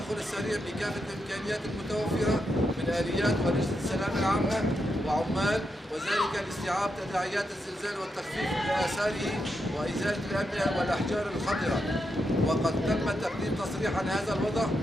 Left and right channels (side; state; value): both; normal; correlation 0.84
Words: السريع بكافة الإمكانيات المتوفرة من آليات ولجنة السلامة العامة وعمال، وذلك لاستيعاب تداعيات الزلزال والتخفيف من آثاره وإزالة الأبنية والأحجار الخطرة. وقد تم تقديم تصريح عن هذا الوضع